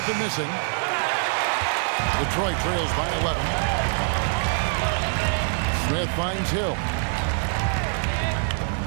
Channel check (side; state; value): left; silent; digital silence